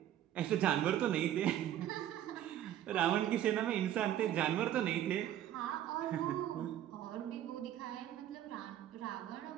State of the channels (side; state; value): left; quieter; 11.6 dB